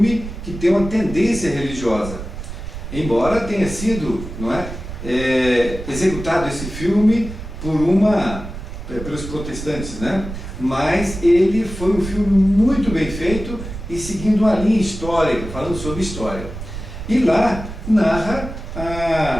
que tem uma tendência religiosa. Embora tenha sido, executado esse filme pelos protestantes, mas ele foi um filme muito bem feito e seguindo uma linha histórica, falando sobre história. E lá narra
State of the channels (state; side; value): noise; right; rumble, 9 dB below the sound